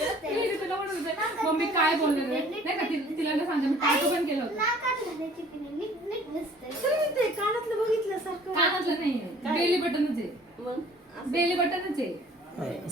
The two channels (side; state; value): both; normal; correlation 0.52